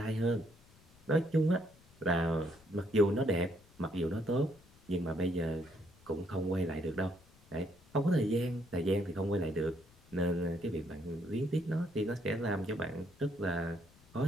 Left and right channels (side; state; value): left; noise; rumble, 27 dB below the sound